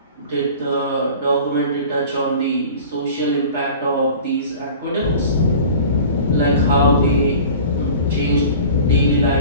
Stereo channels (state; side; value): inverted; both; correlation -0.41